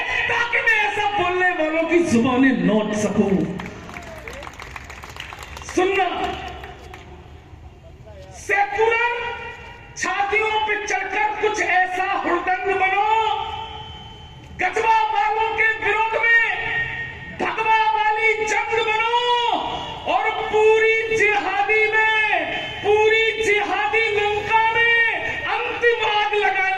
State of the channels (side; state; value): both; identical; correlation 1.00